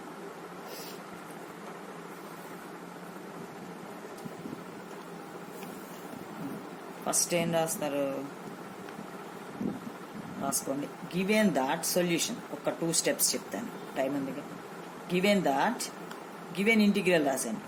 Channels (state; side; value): identical; both; correlation 1.00